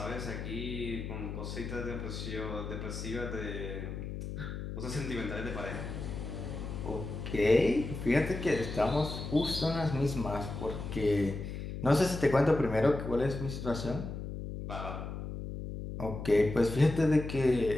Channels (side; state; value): left; noise; hum, 7 dB below the sound